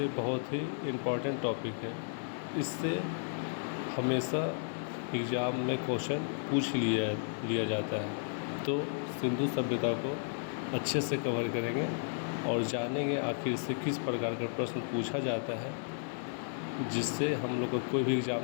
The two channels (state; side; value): silent; right; 55 dB below the other